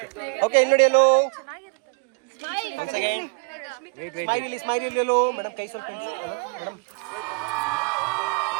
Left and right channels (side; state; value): left; quieter; 33.4 dB